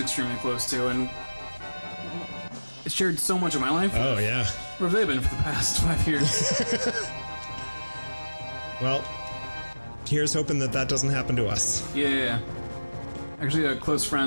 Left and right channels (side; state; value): both; inverted; correlation -1.00